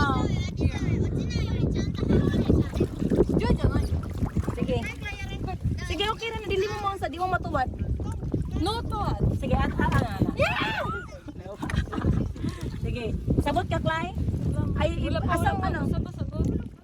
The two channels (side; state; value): both; identical; correlation 1.00